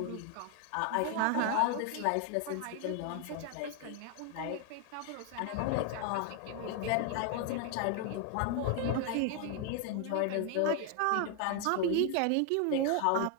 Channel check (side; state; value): both; different; correlation 0.00